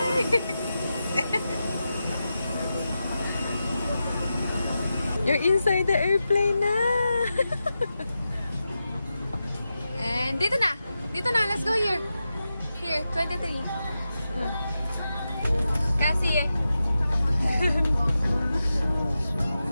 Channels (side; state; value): both; inverted; correlation -0.91